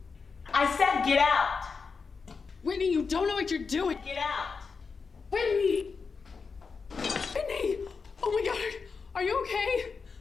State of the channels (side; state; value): right; quieter; 5.1 dB